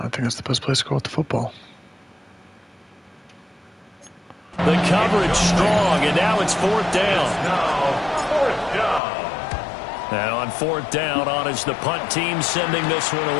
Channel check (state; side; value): drops out; right; at 9.0 s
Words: think that's the best place to go with the football. The coverage strong, and now it's fourth down. And on fourth down, on is the punt team sending this one